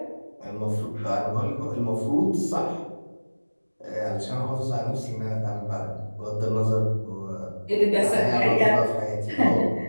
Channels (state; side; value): inverted; both; correlation -1.00